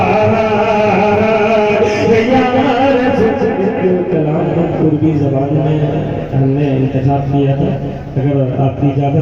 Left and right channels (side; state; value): both; identical; correlation 1.00